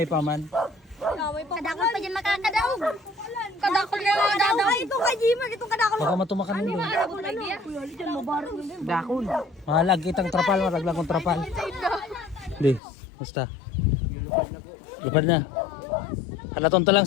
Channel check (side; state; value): right; drops out; at 12.8 s